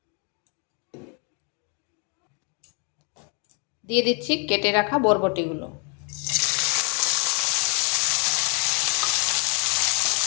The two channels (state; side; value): quieter; right; 36.2 dB